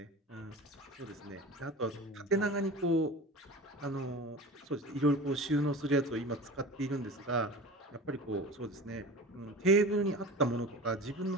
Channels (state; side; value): normal; both; correlation 0.34